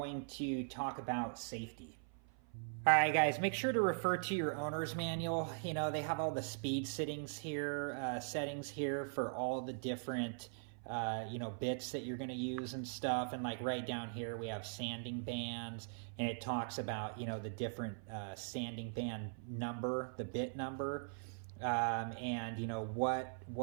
to talk about safety. Alright guys, make sure to refer to your owner's manual. You know, they have all the speed settings here for all the different bits that you're going to use and stuff. And like right down here we have sanding bands, and it talks about the different sanding band number, the bit number, and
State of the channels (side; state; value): left; silent; 51 dB below the other